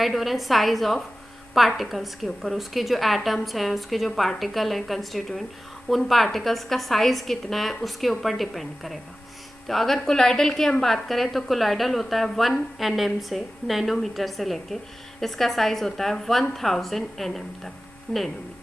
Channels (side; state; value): both; normal; correlation 0.95